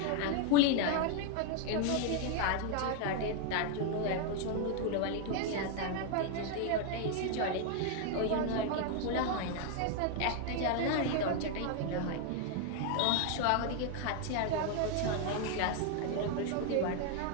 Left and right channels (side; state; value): both; different; correlation 0.00